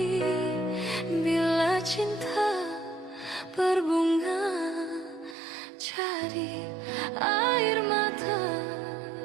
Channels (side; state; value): left; drops out; at 5.4 s